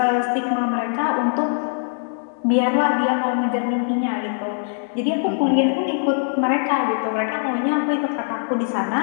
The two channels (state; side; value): silent; right; digital silence